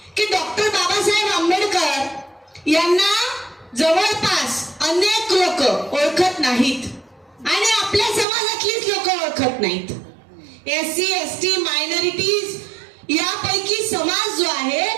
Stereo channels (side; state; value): left; drops out; at 8.2 s